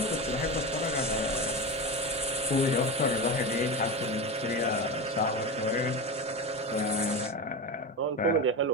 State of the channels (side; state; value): both; normal; correlation 0.22